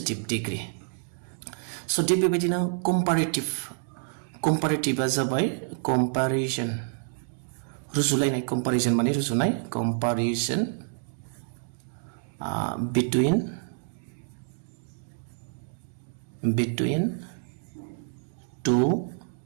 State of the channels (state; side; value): silent; left; digital silence